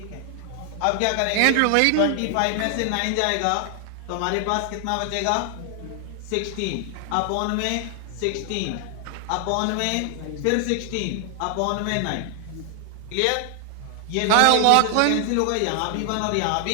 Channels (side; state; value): both; different; correlation 0.00